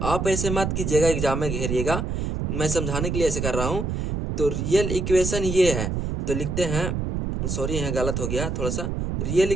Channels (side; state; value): right; noise; rumble, 1 dB below the sound